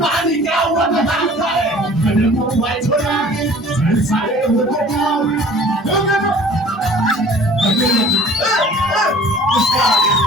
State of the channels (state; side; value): normal; both; correlation 0.48